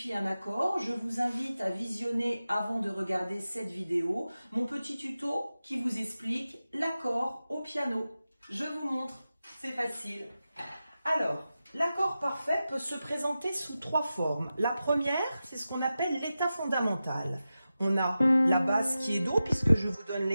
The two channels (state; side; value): inverted; both; correlation -0.93